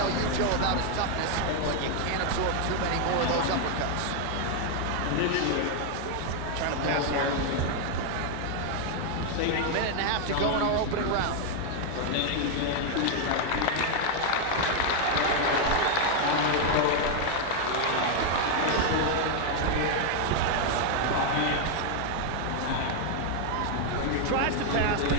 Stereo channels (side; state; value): both; different; correlation 0.01